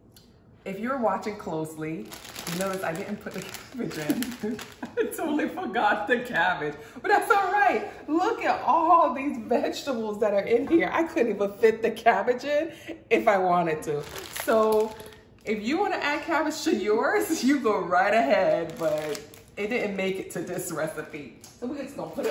if you're watching closely, you notice I didn't put the cabbage in. I totally forgot the cabbage, but that's all right. Look at all these vegetables that are in here. I couldn't even fit the cabbage in if I wanted to. So if you want to add cabbage to yours, you go right ahead, but it didn't make it to this recipe. So we're just gonna put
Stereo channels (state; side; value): identical; both; correlation 1.00